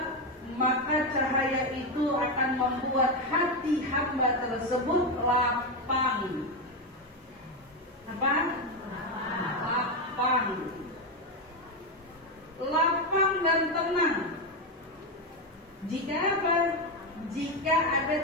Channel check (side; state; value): both; normal; correlation 0.09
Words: maka cahaya itu akan membuat hati hamba tersebut lapang. Apa? Lapang. Lapang dan tenang. Jika apa? Jika ada